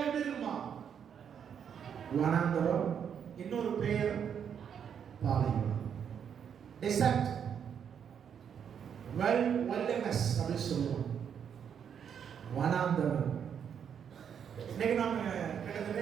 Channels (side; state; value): left; quieter; 7.9 dB